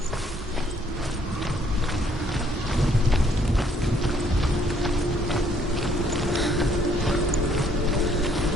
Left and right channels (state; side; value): normal; both; correlation 0.65